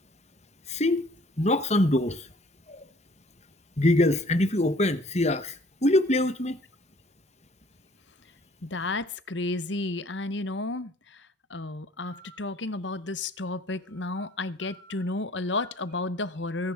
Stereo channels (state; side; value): normal; both; correlation 0.55